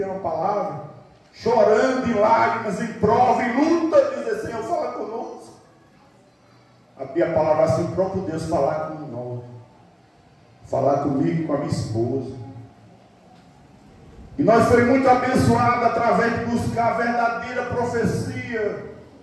uma palavra, chorando em lágrimas, em prova, em luta, dizer: Senhor, fala conosco. Abria a palavra assim, o próprio Deus falar com nós, falar comigo, com a minha esposa. E nós fomos muito abençoados através de buscar a verdadeira profecia,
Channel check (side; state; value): both; identical; correlation 1.00